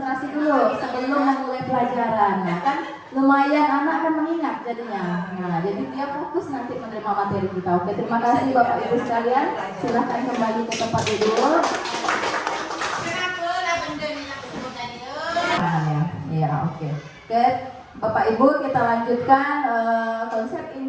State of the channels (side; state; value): both; identical; correlation 1.00